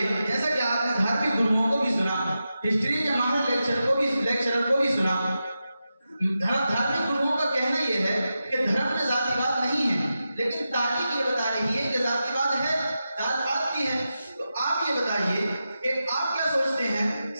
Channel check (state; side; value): inverted; both; correlation -0.90